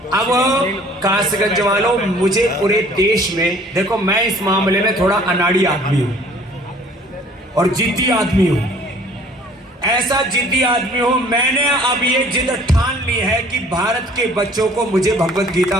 अब कासगंज वालों, मुझे पूरे देश में देखो, मैं इस मामले में थोड़ा अनाड़ी आदमी हूं और जिद्दी आदमी हूं। ऐसा जिद्दी आदमी हूं, मैंने अब ये जिद ठान ली है कि भारत के बच्चों को मुझे भगवत गीता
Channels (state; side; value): normal; both; correlation 0.53